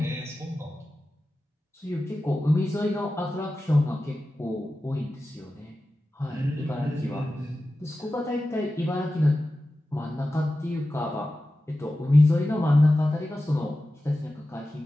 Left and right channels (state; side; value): normal; both; correlation 0.94